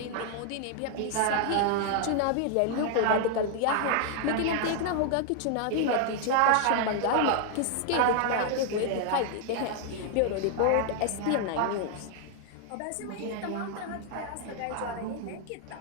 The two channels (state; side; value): different; both; correlation 0.00